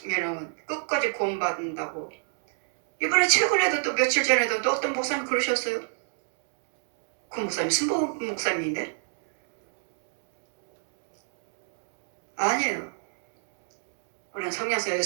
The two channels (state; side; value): silent; left; digital silence